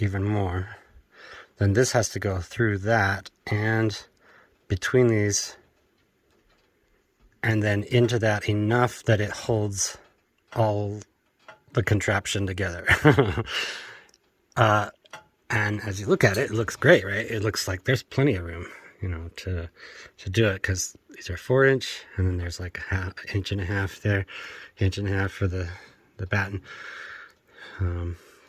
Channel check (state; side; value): identical; both; correlation 1.00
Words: more. Then this has to go through that and between these, and then into that enough that it holds all the contraption together. And as you look at it, it looks great, right? It looks like there's plenty of room, to do it, because these are 4-inch, and then there's like an inch and a half there, inch and a half for the batten.